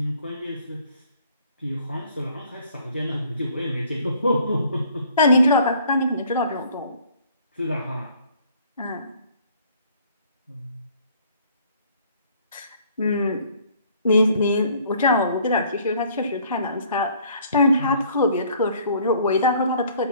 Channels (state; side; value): inverted; both; correlation -0.58